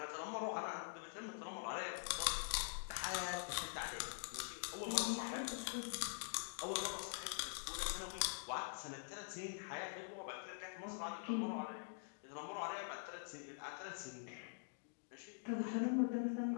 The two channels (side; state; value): right; silent; digital silence